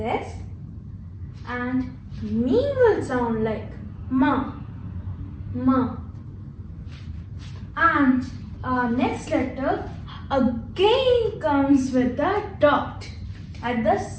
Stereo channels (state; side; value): identical; both; correlation 1.00